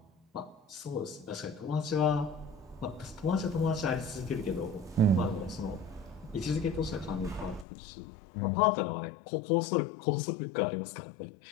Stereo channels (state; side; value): drops out; right; at 7.7 s